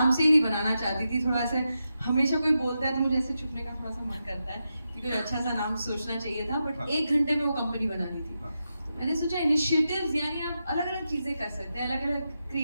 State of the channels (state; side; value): inverted; both; correlation -0.88